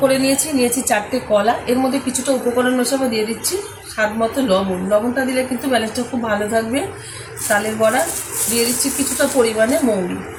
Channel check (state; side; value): identical; both; correlation 1.00